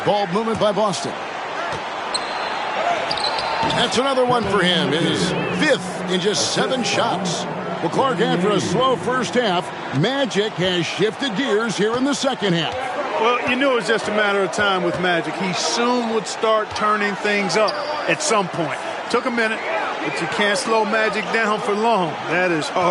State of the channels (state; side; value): identical; both; correlation 1.00